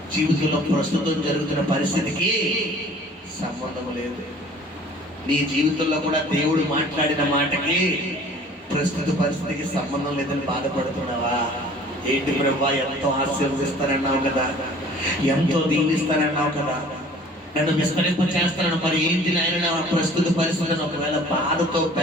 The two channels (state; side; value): normal; both; correlation 0.50